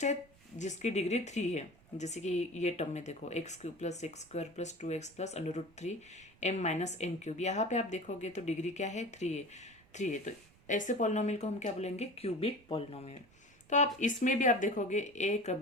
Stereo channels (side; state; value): right; noise; rumble, 28 dB below the sound